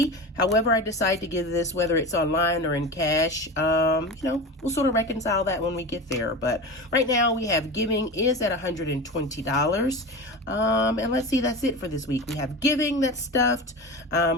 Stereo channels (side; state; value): both; normal; correlation 0.27